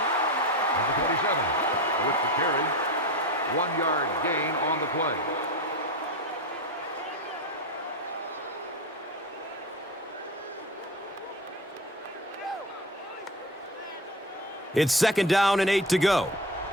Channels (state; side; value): normal; both; correlation 0.25